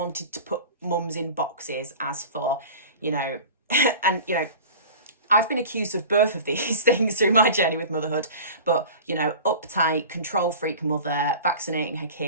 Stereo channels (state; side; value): inverted; both; correlation -0.37